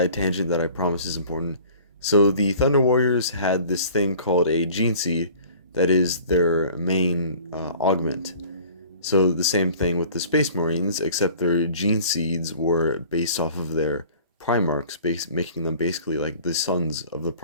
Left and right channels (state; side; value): inverted; both; correlation -0.48